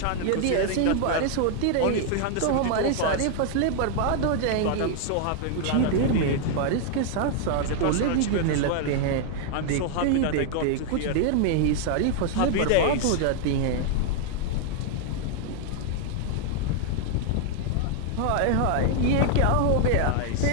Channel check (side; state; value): both; different; correlation 0.00